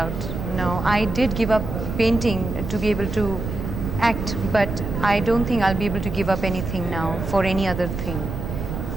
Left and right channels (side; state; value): right; noise; rumble, 5 dB below the sound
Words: No, I did give up painting to be able to act, but I don't think I'll be able to give up anything now for any other thing.